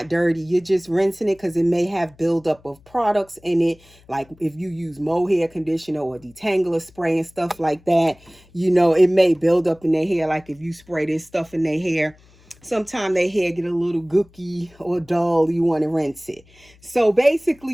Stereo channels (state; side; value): noise; left; hum, 28 dB below the sound